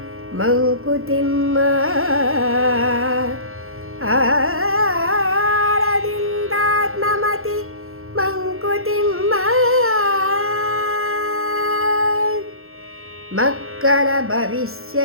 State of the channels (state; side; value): late; left; 0.62 ms